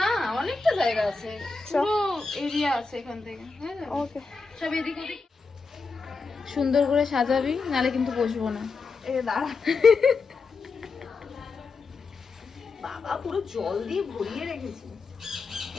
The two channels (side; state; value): right; quieter; 4.3 dB